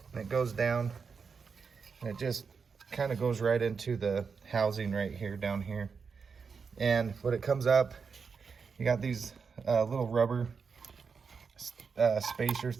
And it goes down. And it just kind of goes right into the housing right here, down here. And when it comes up, you got these little rubber spacer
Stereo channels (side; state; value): left; quieter; 5.6 dB